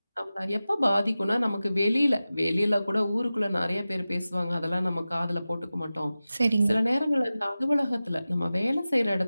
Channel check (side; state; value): both; inverted; correlation -0.95